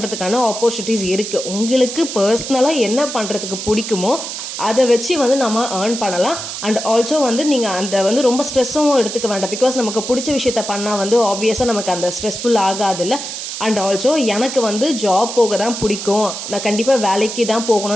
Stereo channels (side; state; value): right; noise; hiss, 7 dB below the sound